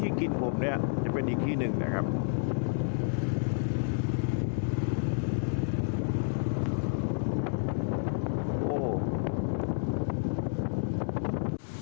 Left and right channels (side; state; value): right; silent; digital silence